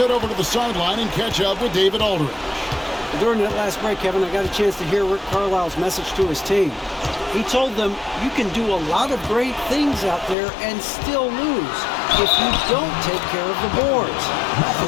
over to the sideline and catch up with David Aldridge. During that last break, Kevin, I got a chance to hear Rick Carlisle's message to his team. He told them, you can do a lot of great things out there and still lose if you don't take care of the boards. I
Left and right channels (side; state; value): right; drops out; at 10.4 s